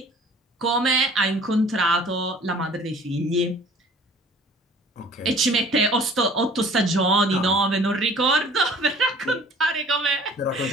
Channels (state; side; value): normal; both; correlation 0.51